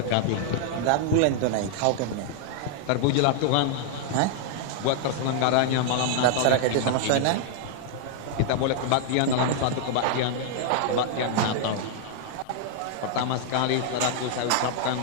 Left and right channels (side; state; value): both; different; correlation -0.01